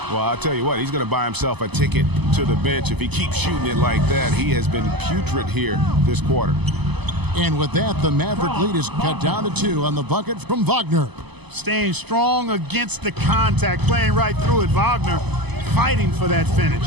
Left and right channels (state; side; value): late; left; 0.99 ms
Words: Well, I'll tell you what, he's going to buy himself a ticket to the bench if he keeps shooting it like that. He has been putrid here this quarter. And with that, the Maverick lead is cut down to 2 on the bucket from Wagner. Staying strong against the contact, playing right through it. Wagner fighting for that finish.